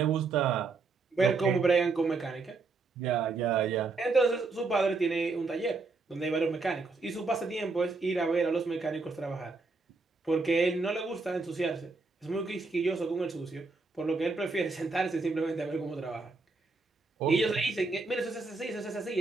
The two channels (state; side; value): quieter; left; 3.9 dB